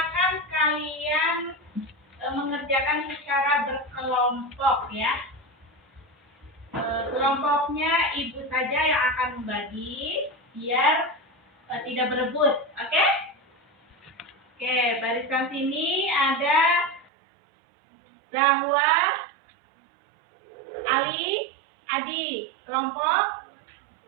kalian mengerjakan secara berkelompok ya. Kelompoknya ibu saja yang akan membagi biar tidak berebut, oke? Oke, barisan sini ada Zahwa, Ali, Adi, kelompok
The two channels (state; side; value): drops out; left; at 17.1 s